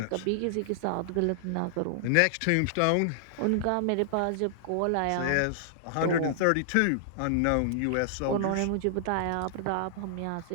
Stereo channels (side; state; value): both; different; correlation -0.01